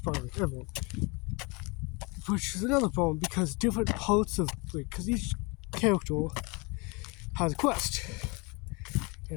like everyone. Which is another problem, because different parts of, because each character has a quest.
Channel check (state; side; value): quieter; right; 29.0 dB